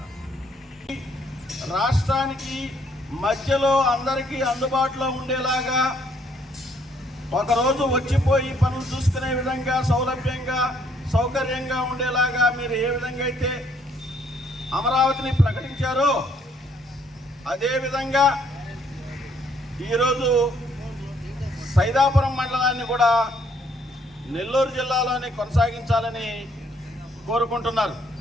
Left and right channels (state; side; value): normal; both; correlation 0.67